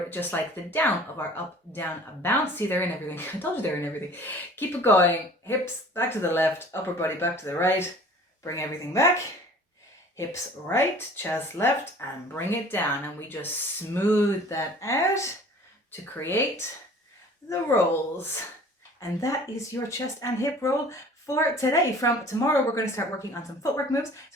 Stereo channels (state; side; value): normal; both; correlation 0.47